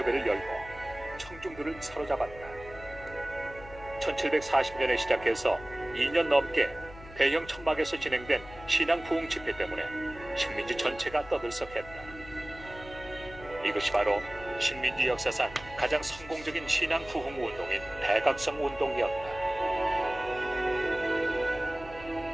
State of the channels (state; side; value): noise; left; hum, 17 dB below the sound